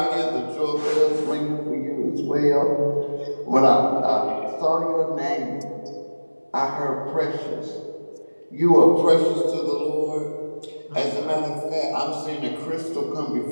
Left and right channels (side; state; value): both; inverted; correlation -1.00